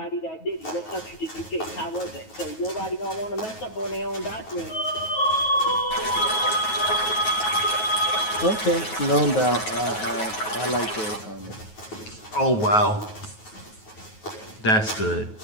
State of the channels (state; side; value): late; right; 9.3 ms